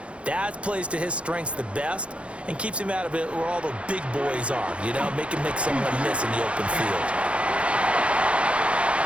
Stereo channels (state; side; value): late; left; 0.060 ms